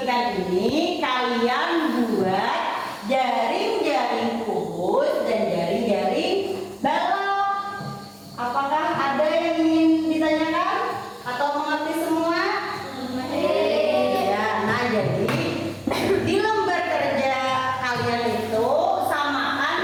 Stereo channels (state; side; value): identical; both; correlation 1.00